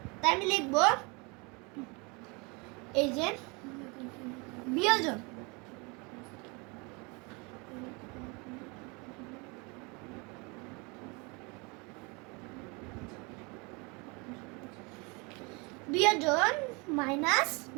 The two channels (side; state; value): left; quieter; 29.3 dB